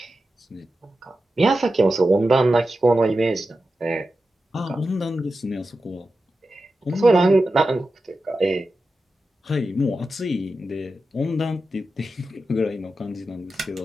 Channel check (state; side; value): normal; both; correlation 0.92